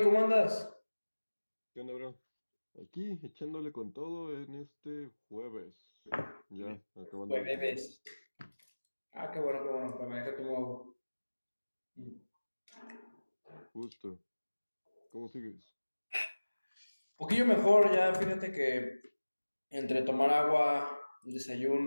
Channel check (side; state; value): both; inverted; correlation -1.00